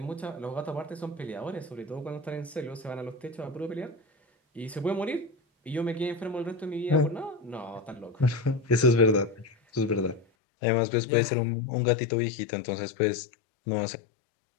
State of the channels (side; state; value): right; drops out; at 10.2 s